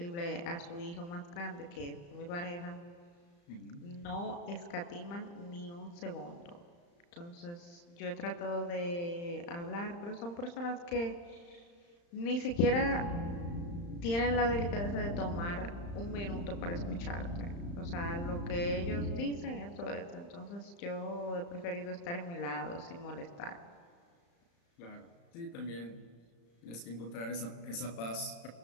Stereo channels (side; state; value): right; late; 35 ms